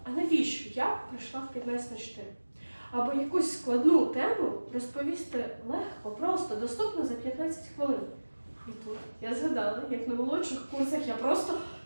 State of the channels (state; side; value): inverted; both; correlation -1.00